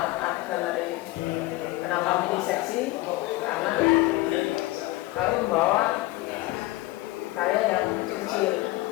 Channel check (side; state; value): right; quieter; 19.0 dB